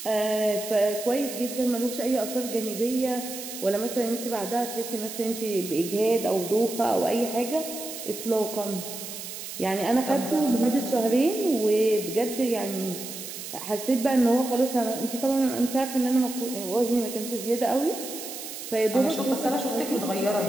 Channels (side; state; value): right; noise; hiss, 9 dB below the sound